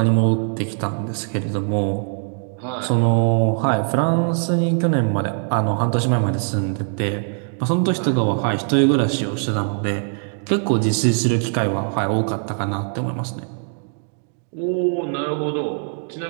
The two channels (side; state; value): left; silent; 56 dB below the other